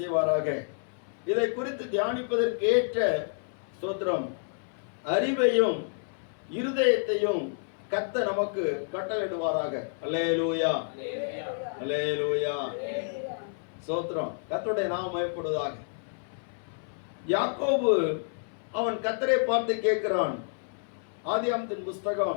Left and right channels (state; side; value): silent; right; 58 dB below the other